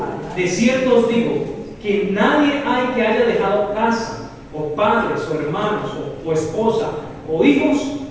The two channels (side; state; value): both; identical; correlation 1.00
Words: De cierto os digo, que nadie hay que haya dejado casa, o padres, o hermanos, o esposa, o hijos,